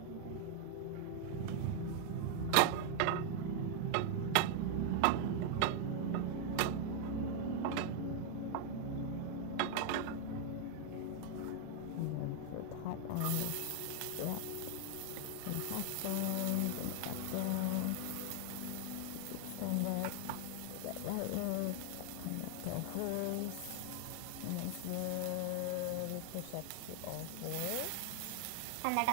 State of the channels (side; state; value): both; different; correlation 0.00